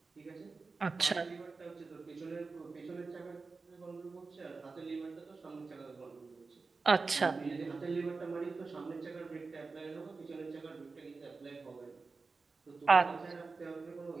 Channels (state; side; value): quieter; left; 4.2 dB